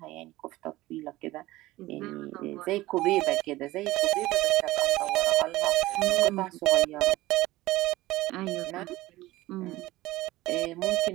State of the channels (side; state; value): left; quieter; 17.9 dB